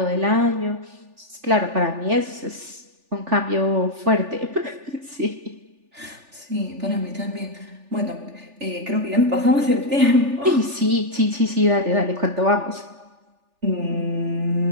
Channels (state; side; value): late; left; 3.4 ms